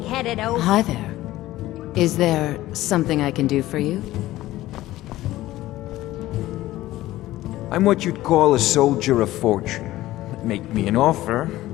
oaf. Hi there. Is there something I can do for you? I'm what you'd call a soldier of fortune. Make me an offer,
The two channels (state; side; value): quieter; right; 16.0 dB